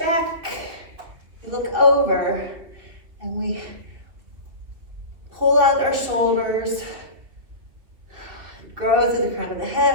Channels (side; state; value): left; late; 2.7 ms